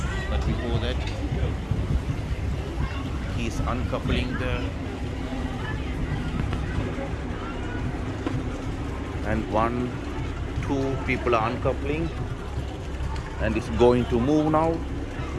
But before that, he's uncoupling and 1, 2 people are uncoupling, and it's going to move now.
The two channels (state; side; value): identical; both; correlation 1.00